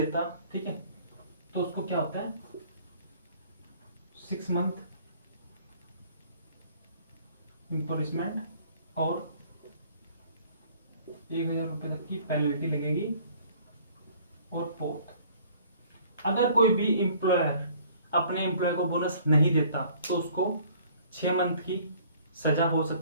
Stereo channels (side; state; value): both; inverted; correlation -0.55